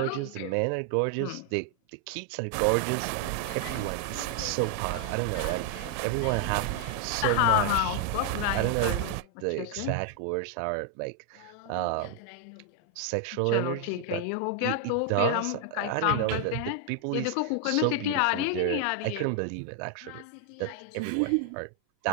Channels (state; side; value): different; both; correlation 0.00